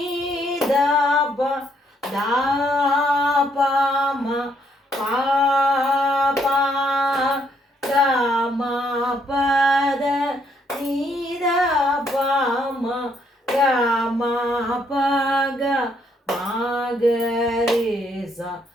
బ దాప మ పాప గమ పద నీద పమ గమ ప గమ గరేజ.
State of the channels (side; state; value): both; normal; correlation 0.71